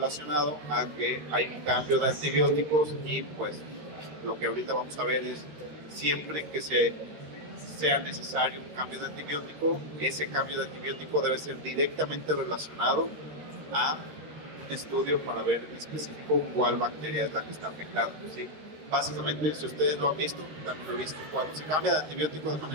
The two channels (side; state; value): left; late; 13 ms